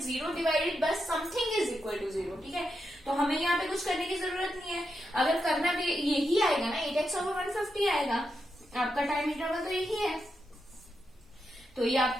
0 divided by something is equal to 0, ठीक है। तो हमें यहाँ पे कुछ करने की जरूरत नहीं है, अगर करना भी यही आएगा ना 8x ओवर 150 आएगा, आपका टाइम इंटरवल तो यही है, तो ये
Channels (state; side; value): normal; both; correlation 0.85